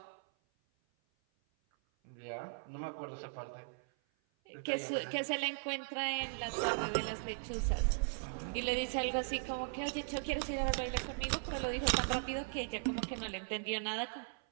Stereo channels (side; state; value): left; silent; 52 dB below the other